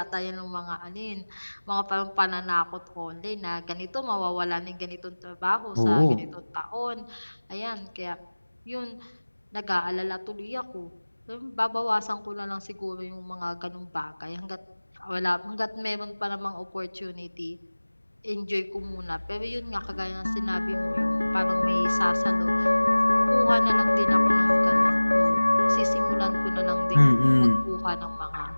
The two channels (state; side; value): inverted; both; correlation -1.00